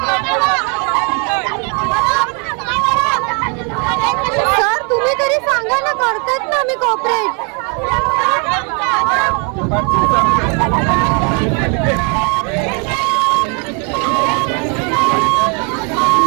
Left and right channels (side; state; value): left; quieter; 35.7 dB